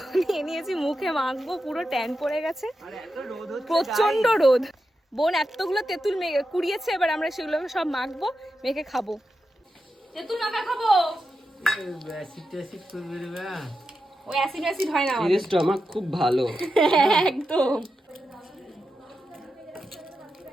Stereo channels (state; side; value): normal; both; correlation 0.89